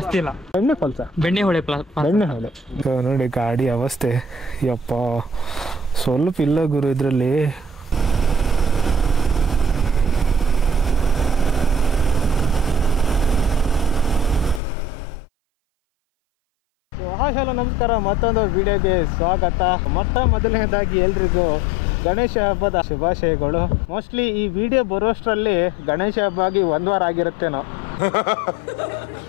ಇಲ್ಲ. ಬೆಣ್ಣೆಹೊಳೆ ಬೆಣ್ಣೆಹೊಳೆ ನೋಡಿ ಗಾಡಿ ಅವಸ್ಥೆ ಯಪ್ಪ ಸ್ವಲ್ಪ ಇಲ್ಲ ಗುರು ಇದರಲ್ಲಿ. ಹಲೋ ನಮಸ್ಕಾರ, ಮತ್ತೊಂದು ವಿಡಿಯೋಗೆ ಸ್ವಾಗತ. ಮೊದಲನೇದಾಗಿ ಎಲ್ರಿಗೂ ಗಣೇಶ ಹಬ್ಬದ ಶುಭಾಶಯಗಳು. ಮೋಸ್ಟ್ಲಿ ಈ ವಿಡಿಯೋ ಬರೋಷ್ಟರಲ್ಲಿ ಗಣೇಶ ಹಬ್ಬ ಆಗಿ 1 ವಾರ ಆಗಿರುತ್ತೇನೋ.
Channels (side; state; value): right; drops out; at 14.6 s